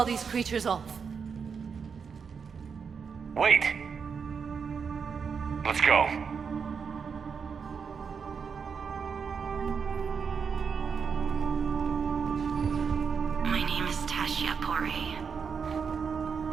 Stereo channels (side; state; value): left; quieter; 6.1 dB